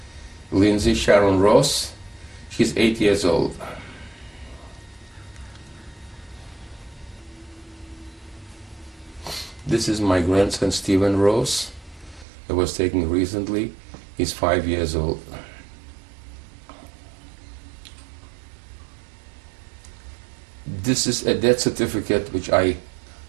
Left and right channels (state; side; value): drops out; left; at 12.2 s